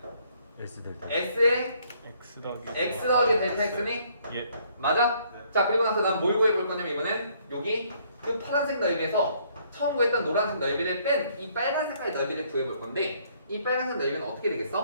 S 델타. S의 x X 더하기 델타 X니? 예. 맞아? 자 그리고 나서 난 뭘 구해볼 거냐면 이번엔 여기 그 파란색 넓이에서 처음 구했던 노란색 넓이를 뺀 이 빨간색깔 넓이를 구해볼 건데 이 빨간색 넓이는 어떻게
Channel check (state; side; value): inverted; both; correlation -0.65